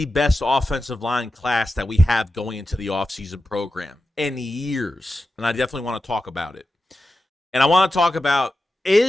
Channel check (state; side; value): normal; both; correlation 0.92